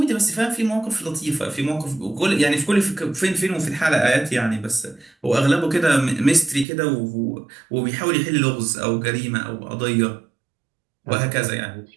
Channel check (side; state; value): left; drops out; at 6.7 s